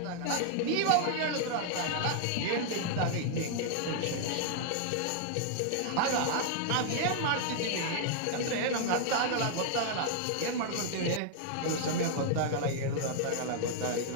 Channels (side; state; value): both; different; correlation 0.00